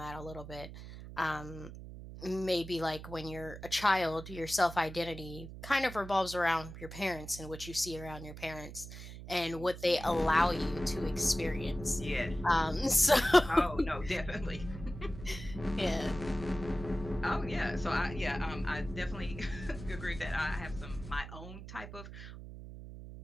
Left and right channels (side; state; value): right; noise; hum, 12 dB below the sound